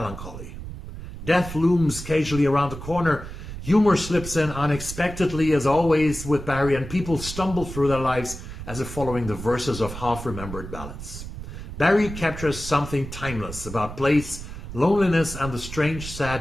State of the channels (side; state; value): right; noise; rumble, 10 dB below the sound